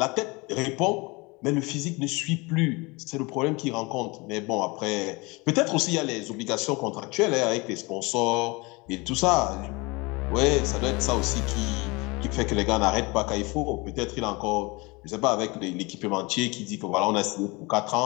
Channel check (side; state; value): right; quieter; 25.9 dB